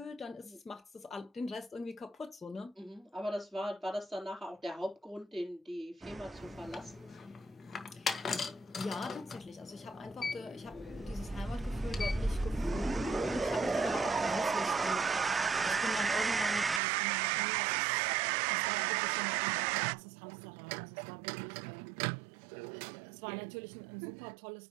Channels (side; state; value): left; drops out; at 16.8 s